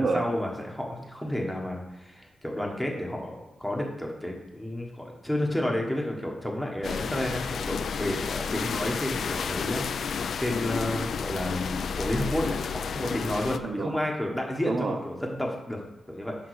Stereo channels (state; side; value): normal; both; correlation 0.90